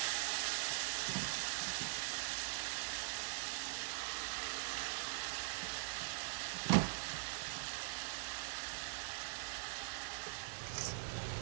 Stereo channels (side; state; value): left; silent; digital silence